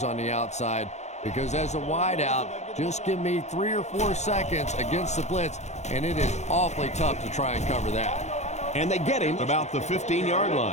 on the outside, because as a wideout, just give me 3 or 4 seconds against the blitz, and it is awfully tough to try and cover that. And they get him about the 15-yard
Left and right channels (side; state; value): right; late; 0.33 ms